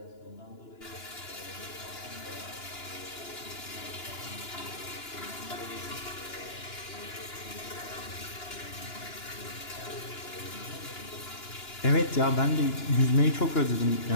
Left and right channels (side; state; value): right; late; 2.9 ms